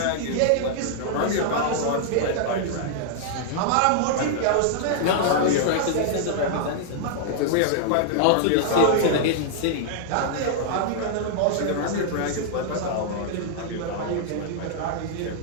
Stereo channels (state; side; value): different; both; correlation -0.01